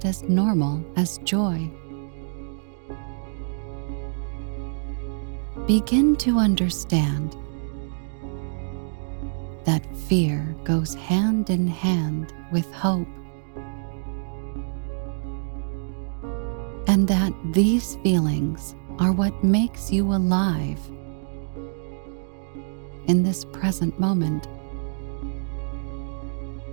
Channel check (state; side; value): silent; left; digital silence